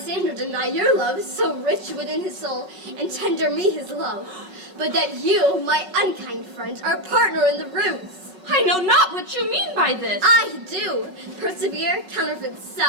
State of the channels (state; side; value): late; left; 5.4 ms